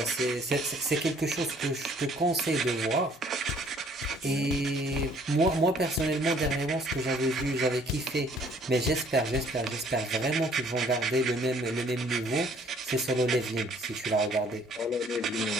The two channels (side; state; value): both; normal; correlation 0.59